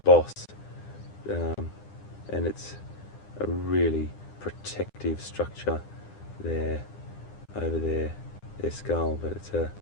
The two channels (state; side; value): late; right; 9.9 ms